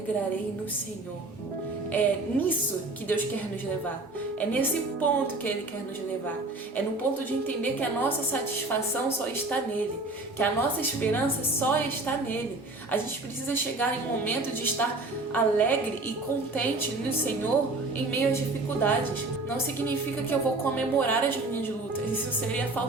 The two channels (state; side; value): quieter; left; 3.1 dB